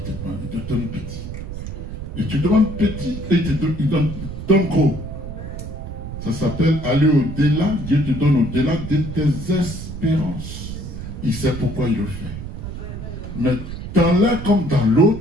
il te donne petit. Et tu demandes petit et il donne gros. Ça s'appelle aller au-delà. Dieu te donne au-delà de tes espérances. Il sait pourquoi il le fait. Mais dans l'un comme dans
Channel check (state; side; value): noise; right; rumble, 8 dB below the sound